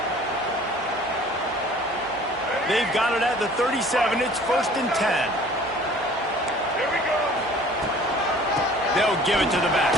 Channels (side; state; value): both; normal; correlation 0.49